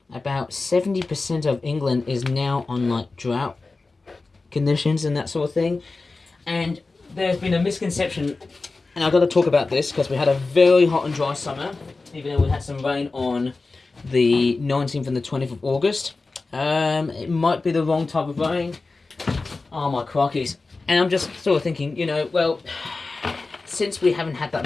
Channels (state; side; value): quieter; right; 3.7 dB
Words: about 70% of England is now on like drought conditions and that sort of thing. And there's been a misconception, and I've got to talk about this because we had a very hot and dry summer, even though we had some rain on the 19th and the 20th of August. It might be the wrong type of rain. Oh my crockies. And I'm just sort of thinking, you know, well, since we haven't had